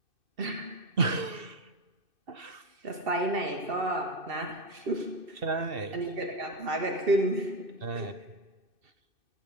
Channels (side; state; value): left; late; 2.7 ms